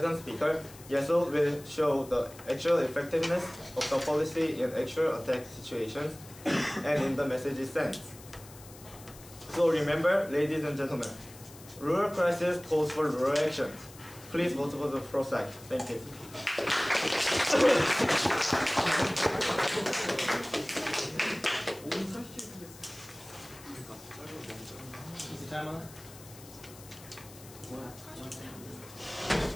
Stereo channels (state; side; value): noise; left; hiss, 19 dB below the sound